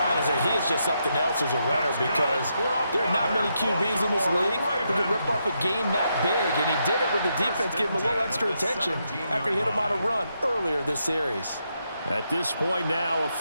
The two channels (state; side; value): inverted; both; correlation -0.81